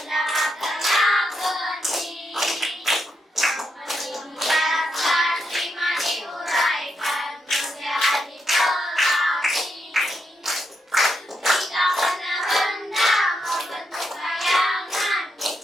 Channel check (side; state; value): both; normal; correlation 0.81